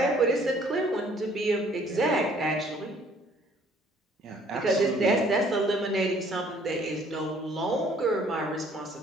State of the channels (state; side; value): normal; both; correlation 0.59